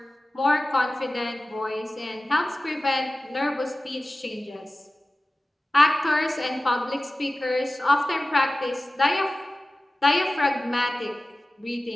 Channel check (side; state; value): both; normal; correlation 0.96